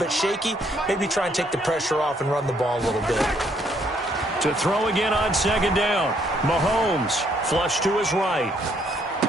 shaky, maybe try and take the pressure off and run the ball a little bit. To throw again on second down. Mahomes flush to his right.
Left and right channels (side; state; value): both; normal; correlation 0.69